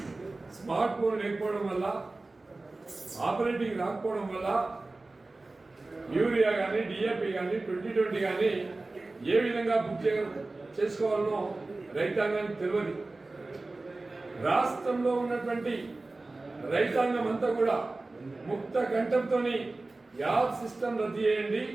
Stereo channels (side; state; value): left; quieter; 3.2 dB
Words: స్మార్ట్ ఫోన్ లేకపోవడం వల్ల, ఆపరేటింగ్ రాకపోవడం వల్ల యూరియా కానీ, డిఏపి కానీ, 2020 కానీ ఏ విధంగా బుక్ చేసుకోవాలనో రైతాంగానికి తెలియదు. రాష్ట్రంలో ఉన్నటువంటి రైతాంగం అంతా కూడా ముక్త కంఠంతో యాప్ సిస్టమ్ రద్దు చేయండి,